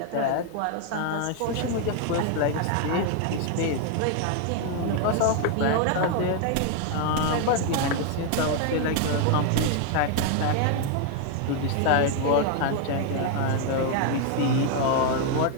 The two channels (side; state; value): both; different; correlation 0.00